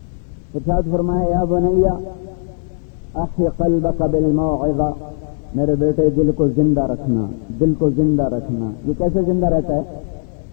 ارشاد فرمایا، یا بنیا احی قلبک بالموعظہ، میرے بیٹے دل کو زندہ رکھنا، دل کو زندہ رکھنا۔ یہ کیسے زندہ رہتا ہے؟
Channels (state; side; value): silent; right; 67 dB below the other